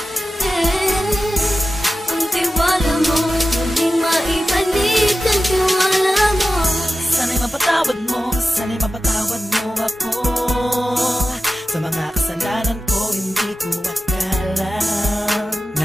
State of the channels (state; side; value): normal; both; correlation 0.93